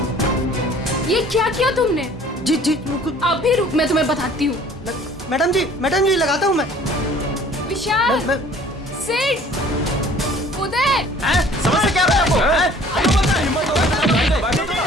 ये क्या किया तुमने? जी जी अभी रुक, मैं तुम्हें बताती हूँ। मैडम जी लगाता हूँ मैं। विशाल, सिड, उदय, समझ से क्या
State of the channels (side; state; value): both; normal; correlation 0.51